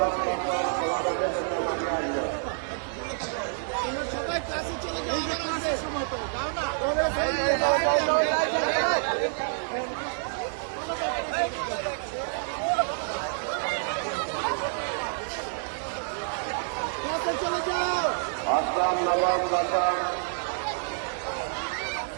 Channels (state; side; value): silent; left; 59 dB below the other